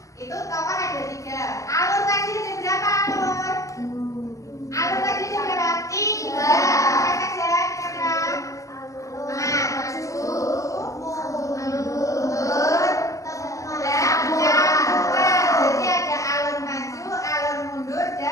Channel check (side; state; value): right; late; 0.16 ms